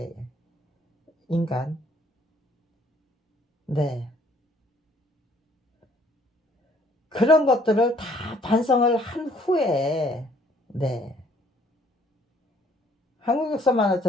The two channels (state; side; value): normal; both; correlation 0.61